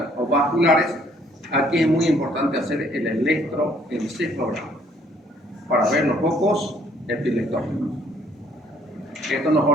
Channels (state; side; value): normal; both; correlation 0.63